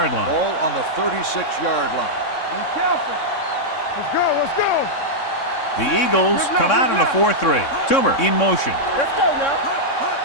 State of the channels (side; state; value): right; late; 3.6 ms